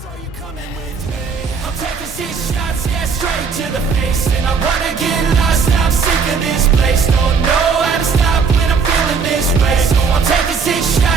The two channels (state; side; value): quieter; left; 5.5 dB